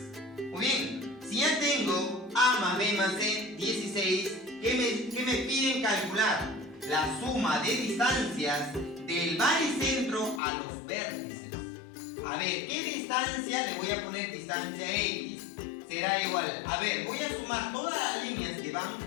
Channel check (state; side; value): drops out; right; at 10.4 s